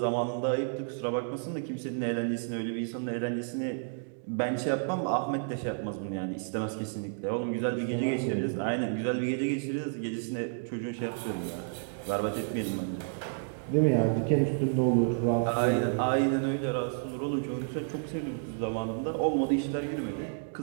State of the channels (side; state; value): left; silent; digital silence